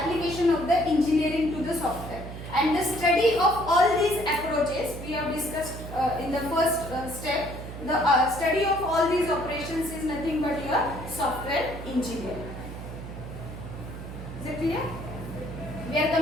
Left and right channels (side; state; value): right; noise; hum, 10 dB below the sound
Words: of the engineering to the software. And the study of all these approaches we have discussed in the first step. The study of all these operations is nothing but your software engineering. Is it clear? We are